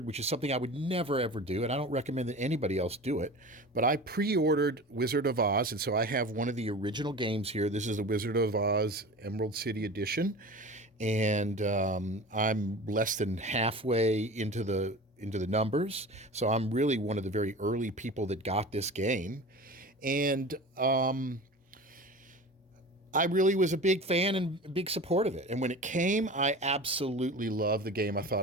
which is something I would never ever do, and I don't recommend that anybody else do it, but I pre-ordered Wizard of Oz, and so I have one of the original games here. This is the Wizard of Oz Emerald City Edition, and I'm less than halfway into the numbers, so I'm really one of the very early people that got this game. And I really was a big fan and a big support of it. And when it came, I absolutely loved the game. I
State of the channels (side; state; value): both; normal; correlation 0.35